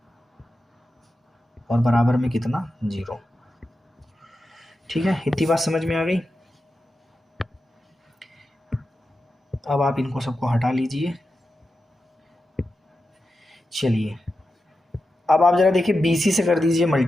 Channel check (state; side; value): normal; both; correlation 0.90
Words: और बराबर में कितना, 0। ठीक है, इतनी बात समझ में आ गई। अब आप इनको सबको हटा लीजिए। चलिए अब आप जरा देखिए BC से कर दीजिए